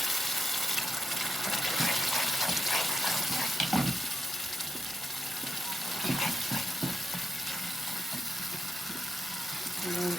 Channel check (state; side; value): normal; both; correlation 0.86